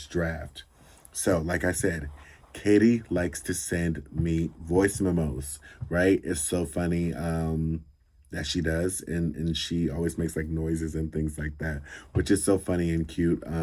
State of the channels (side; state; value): both; identical; correlation 1.00